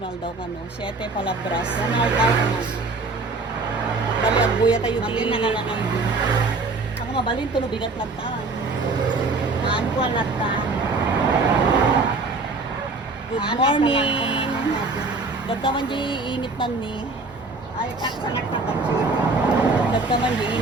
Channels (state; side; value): quieter; left; 3.7 dB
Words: daw ka no, 7 palabras. Internal dawa. Bali agbuya tayo Magin na ka lang ang din. Ako mabalin to no bigat lang taan. Haan ko alat ta. Good morning. Dagka man di init man ni. Ay, taksanak na tansip. Dagka man di